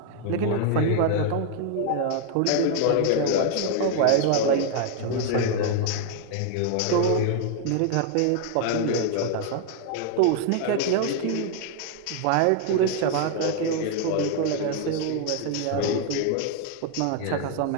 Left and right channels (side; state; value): both; different; correlation 0.00